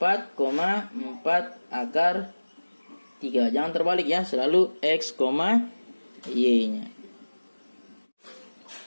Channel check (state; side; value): inverted; both; correlation -1.00